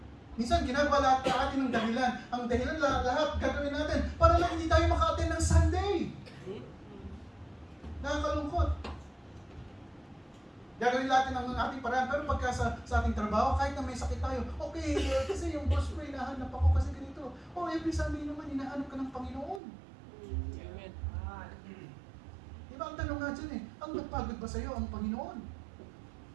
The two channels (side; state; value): left; drops out; at 19.6 s